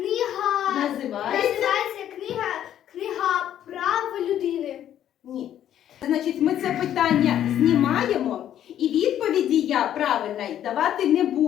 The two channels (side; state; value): right; quieter; 10.9 dB